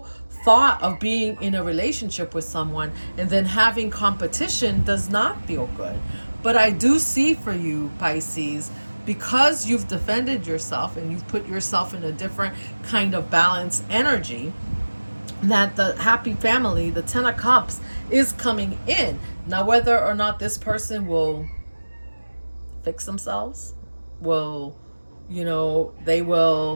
thought of being in a relationship with someone and then having competition does not feel good. But I do see for you, Pisces, because you've defended yourself and you've put yourself in a different kind of balanced energy, that the happy family, the Ten of Cups, is coming in. Now, whether or not this person will fix themselves, they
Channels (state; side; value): inverted; both; correlation -1.00